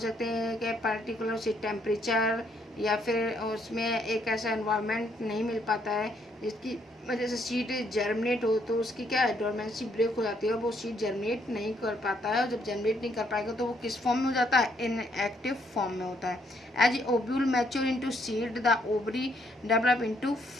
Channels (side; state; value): both; normal; correlation 0.71